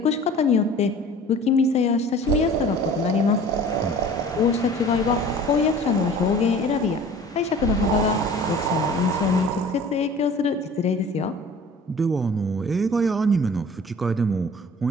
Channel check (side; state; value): both; normal; correlation 0.45